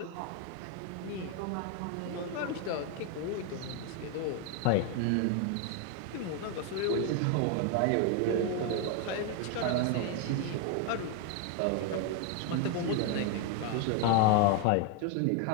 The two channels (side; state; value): both; different; correlation 0.01